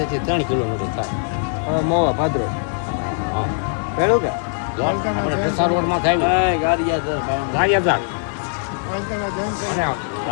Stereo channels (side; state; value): right; silent; 65 dB below the other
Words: 3 કિલોમીટર થાય. મોવા ભાદરો. હા પહેલું કે આપણે ઢસા રોડમાં થાય ગારિયાધાર